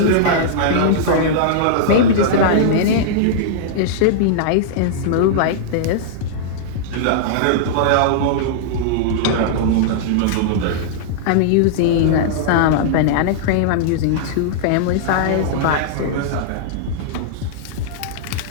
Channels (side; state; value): both; different; correlation -0.02